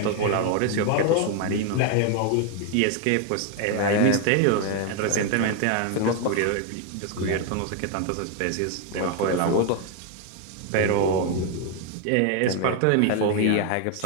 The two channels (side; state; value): both; different; correlation 0.01